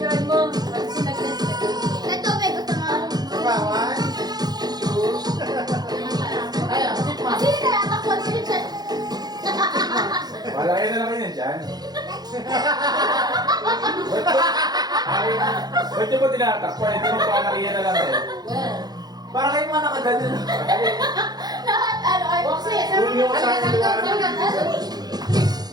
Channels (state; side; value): late; left; 0.19 ms